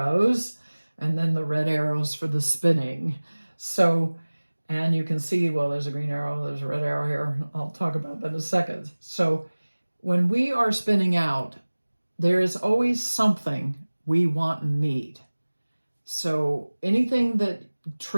and then the red arrows for the spinning. So, and you can see, well, there's a green arrow, there's a red arrow here. I'll talk about that in a second. So when we are spinning out, there is always something we want and need. So anything that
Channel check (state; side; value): inverted; both; correlation -1.00